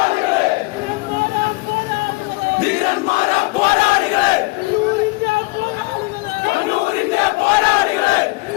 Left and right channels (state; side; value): quieter; right; 24.8 dB